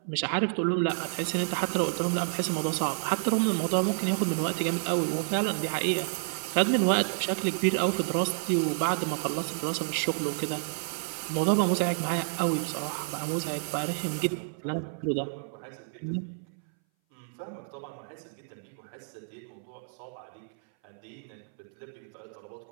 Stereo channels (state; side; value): silent; left; 58 dB below the other